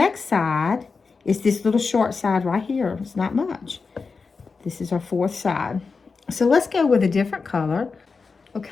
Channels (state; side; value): quieter; right; 4.7 dB